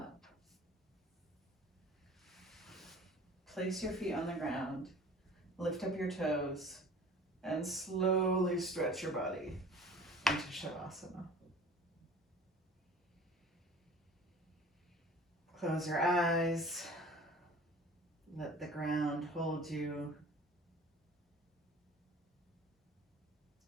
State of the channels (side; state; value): both; normal; correlation 0.45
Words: Place your feet on the ground, lift up your toes, and slowly stretch your body into Shavasana. Close your eyes. Let the ground hold you.